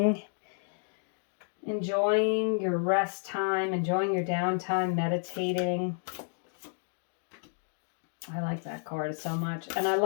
enjoying your rest time, enjoying your downtime, meditating. I like that card so much. And I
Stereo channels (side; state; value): right; silent; 57 dB below the other